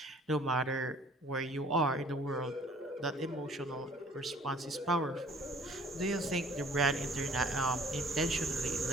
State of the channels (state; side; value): normal; both; correlation 0.53